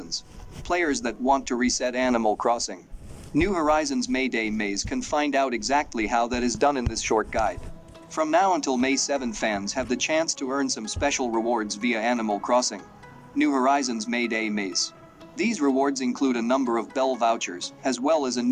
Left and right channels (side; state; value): both; identical; correlation 1.00